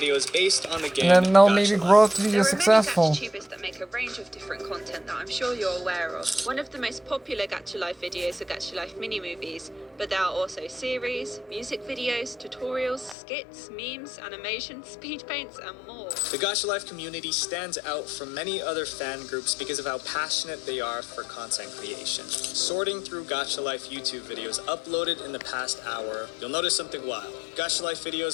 based on the game and then they'll maybe grow to be successful. There are many GachaTubers that make a range of different content that I'm sure you're aware of. One of the most popular Gacha Life videos are Gacha Life mini movies, movies, but there are also series, music videos, tutorials, skits, memes, animation, speed paints, and more. The Gacha Life community stands out from many other fan groups because of how passionate they are for content creation. Sorting through Gacha Life YouTube videos uploaded in the past hour, you'll notice something wild. Gacha Life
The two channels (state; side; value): drops out; right; at 13.2 s